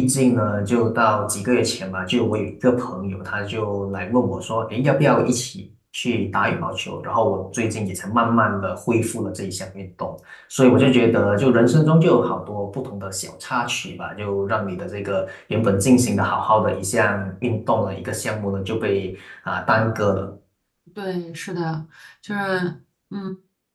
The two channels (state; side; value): identical; both; correlation 1.00